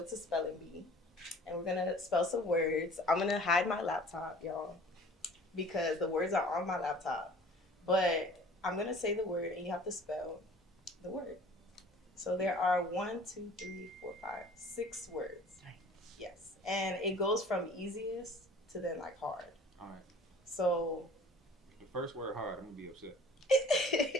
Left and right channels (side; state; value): both; normal; correlation 0.48